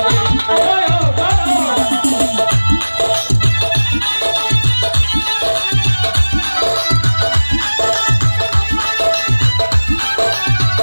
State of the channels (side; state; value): both; inverted; correlation -1.00